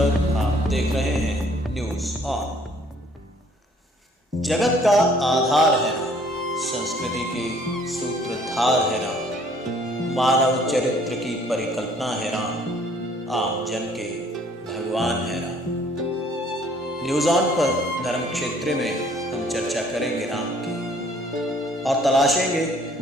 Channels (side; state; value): both; normal; correlation 0.59